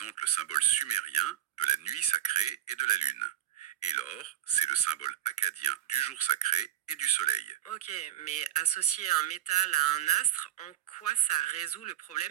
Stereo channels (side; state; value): left; quieter; 12.7 dB